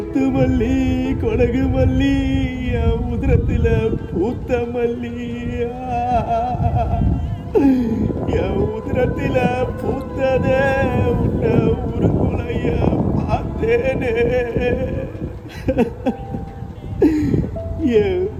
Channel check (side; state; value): both; identical; correlation 1.00